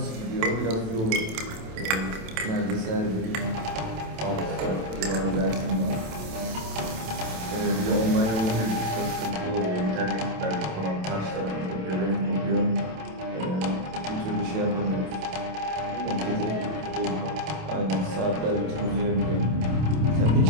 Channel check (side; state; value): left; late; 27 ms